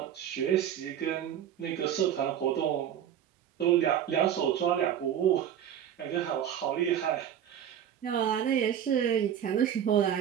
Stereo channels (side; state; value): left; quieter; 9.8 dB